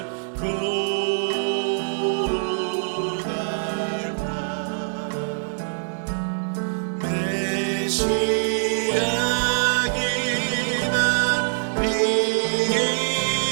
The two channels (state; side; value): silent; left; 63 dB below the other